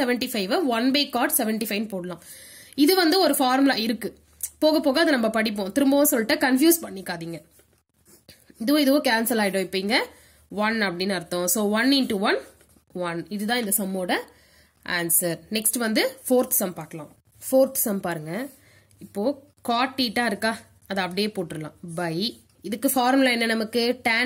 1/cot 75 போடலாம். இது ஒரு ஃபார்முலா இருக்கு. போக போக அதை நம்ம படிப்போம். திரும்பவும் சொல்லிட்டு கன்ஃபியூஸ் பண்ணிக்காதீங்க. இதுவும் கேன்சல் ஆயிடும். இப்ப இங்க 1 அப்படின்னு அர்த்தம். So 1 into 1 1. இதுதான் இந்த சம்மோட ஆன்சர். நெக்ஸ்ட் ஃபோர்த் சம் பார்க்கலாம். ஃபோர்த் சம் பாருங்க. இப்போ cot theta இருக்கா, அதை அப்படியே போட்டுடலாம். பை இதுக்கு ஃபார்முலா என்ன நமக்கு? tan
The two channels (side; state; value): both; identical; correlation 1.00